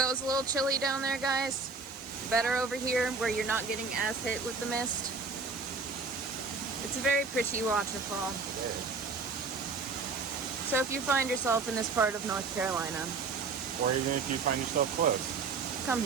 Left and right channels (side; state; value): left; quieter; 4.5 dB